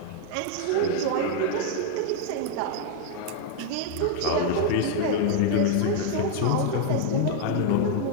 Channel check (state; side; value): different; both; correlation 0.00